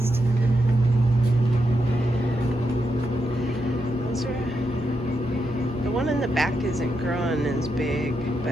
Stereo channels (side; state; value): both; normal; correlation 0.84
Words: The one in the back isn't growing as big,